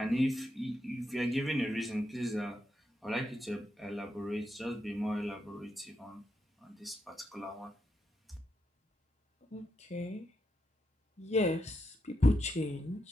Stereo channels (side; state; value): both; normal; correlation 0.83